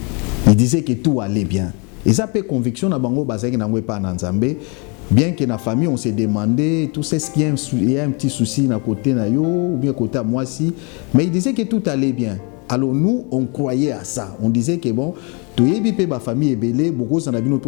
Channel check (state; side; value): quieter; right; 33.3 dB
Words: Ils disaient que tout allait bien. Et ça fait conviction na bango bazaki na ngwe pa na Nzambe. Bien que la famille, on s'est demandé, tout ce qu'il y a un petit souci à côté na yo, ou bien côté à moi si, mais il disait que tout allait bien. Alors nous, on croyait à ça. On disait que bon, tout est bien, ma famille est belle, beaucoup s'en a bien